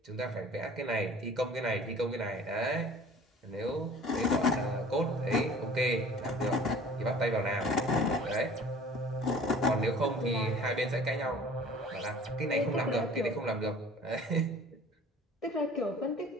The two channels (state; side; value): normal; both; correlation 0.47